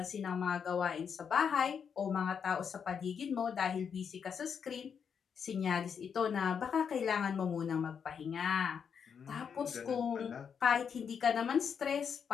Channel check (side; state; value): right; quieter; 7.0 dB